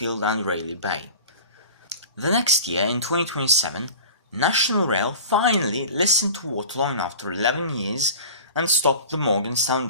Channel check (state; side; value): inverted; both; correlation -0.37